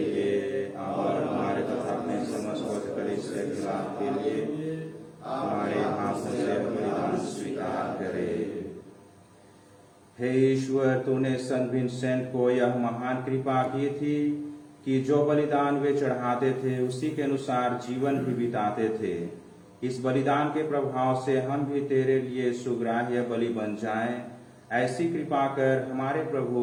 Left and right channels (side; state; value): both; identical; correlation 1.00